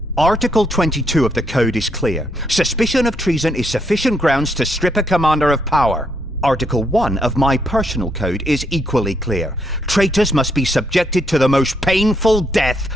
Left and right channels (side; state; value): both; normal; correlation 0.75